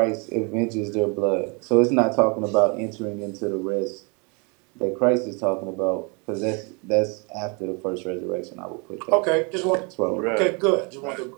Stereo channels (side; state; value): left; quieter; 32.4 dB